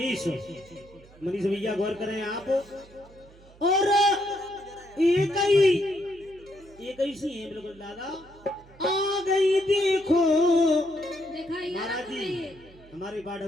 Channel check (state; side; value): noise; right; hum, 24 dB below the sound